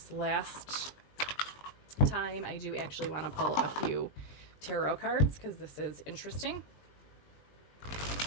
last time. I do actually want to pull a few tarot cards because this is interesting.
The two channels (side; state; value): right; late; 20 ms